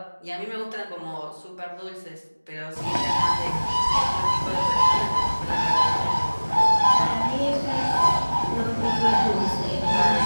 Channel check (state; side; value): inverted; both; correlation -1.00